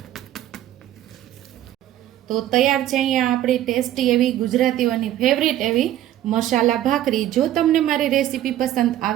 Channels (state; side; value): quieter; left; 12.7 dB